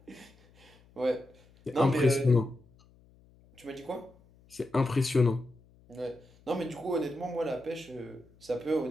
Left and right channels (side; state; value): left; noise; hum, 28 dB below the sound